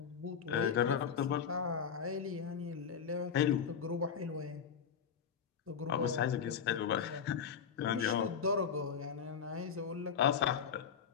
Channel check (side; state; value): right; quieter; 7.2 dB